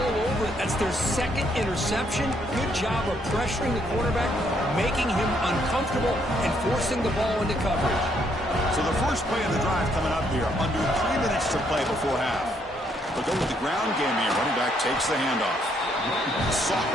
over it. That's their second interception. Good job of pressuring the quarterback, making him uncomfortable, and forcing the ball into coverage. So the first play of the drive coming up here, under 3 minutes to play before half. They'll go with the ground game here. Running back takes the handoff.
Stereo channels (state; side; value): normal; both; correlation 0.71